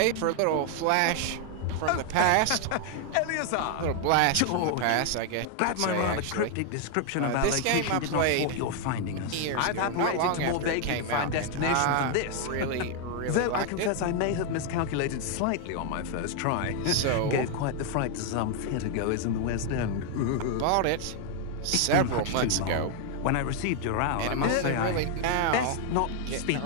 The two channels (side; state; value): both; different; correlation 0.00